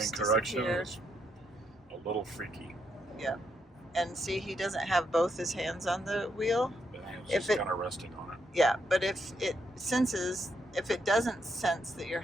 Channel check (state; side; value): normal; both; correlation 0.78